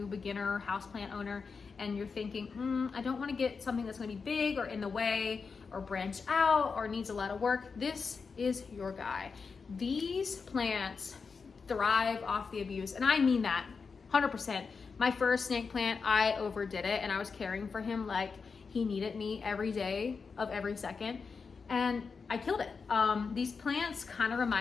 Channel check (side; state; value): right; quieter; 5.1 dB